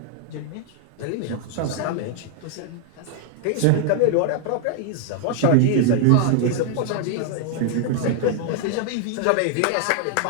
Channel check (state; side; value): different; both; correlation 0.00